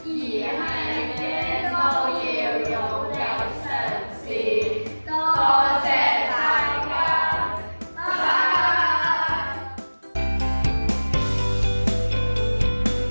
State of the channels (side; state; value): both; inverted; correlation -1.00